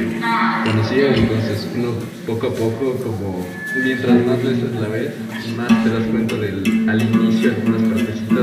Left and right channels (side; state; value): both; identical; correlation 1.00